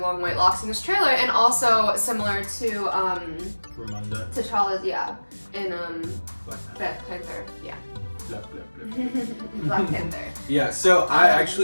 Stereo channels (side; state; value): both; inverted; correlation -1.00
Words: long white locks in this trailer, and also similar to T'Challa's, in Black Panther, Black Panther. Yeah, so I